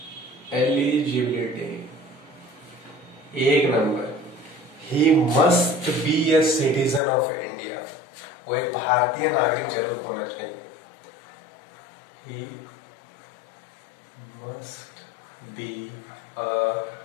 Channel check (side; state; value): right; drops out; at 7.0 s